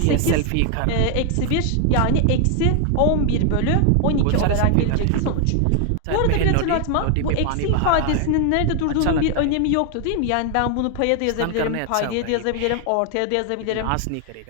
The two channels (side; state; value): both; different; correlation 0.00